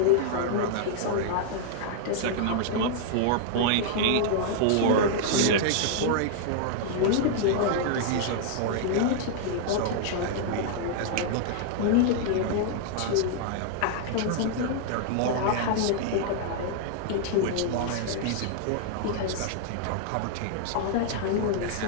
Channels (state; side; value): different; both; correlation -0.01